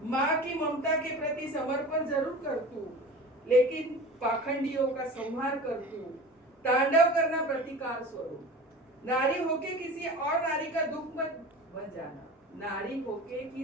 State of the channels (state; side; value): normal; both; correlation 0.36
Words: माँ की ममता के प्रति समर्पण जरूर कर तू, लेकिन पाखंडियों का संहार कर तू. तांडव करना प्रतिकार स्वरूप. नारी होके किसी और नारी का दुख मत बन जाना, नारी होके